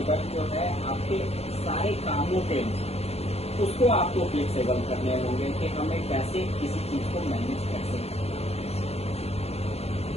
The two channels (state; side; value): late; right; 0.30 ms